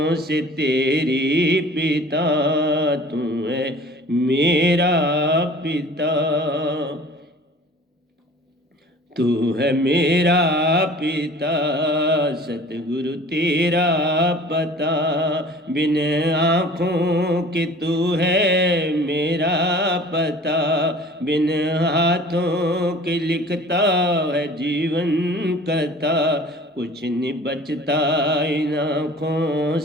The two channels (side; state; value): both; normal; correlation 0.46